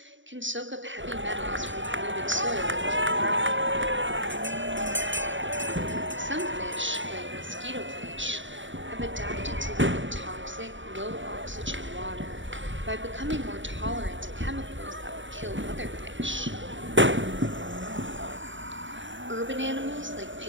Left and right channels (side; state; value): left; late; 0.55 ms